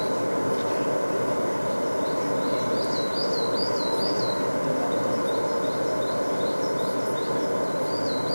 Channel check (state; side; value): inverted; both; correlation -1.00